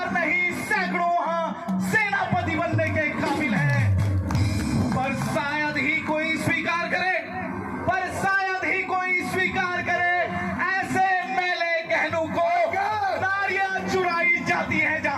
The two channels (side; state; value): both; identical; correlation 1.00